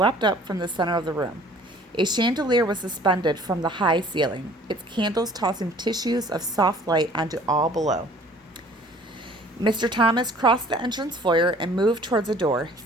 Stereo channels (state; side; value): normal; both; correlation 0.52